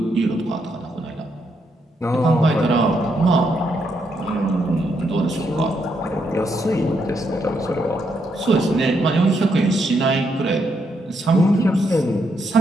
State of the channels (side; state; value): both; normal; correlation 0.78